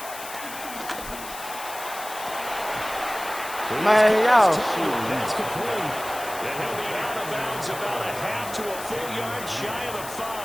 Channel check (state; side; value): noise; left; hiss, 12 dB below the sound